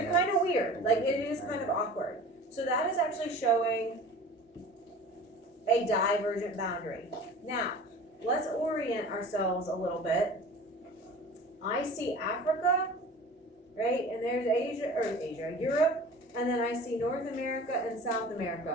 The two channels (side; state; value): both; normal; correlation 0.40